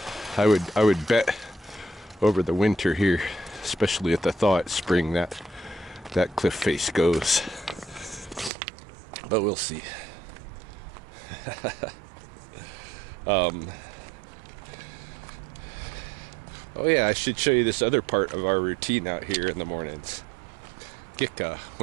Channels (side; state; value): left; drops out; at 8.5 s